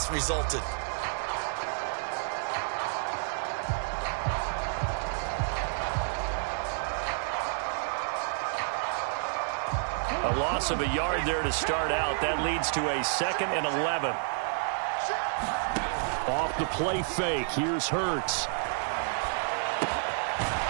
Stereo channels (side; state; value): left; silent; 58 dB below the other